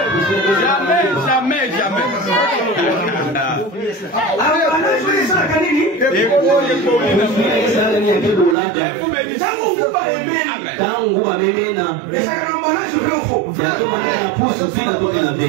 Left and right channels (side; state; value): left; drops out; at 8.6 s